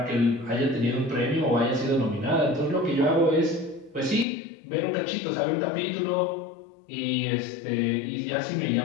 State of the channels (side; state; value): right; drops out; at 4.2 s